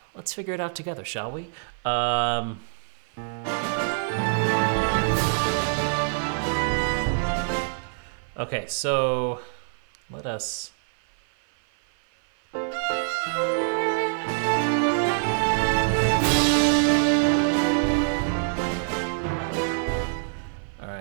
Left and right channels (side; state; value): left; silent; 56 dB below the other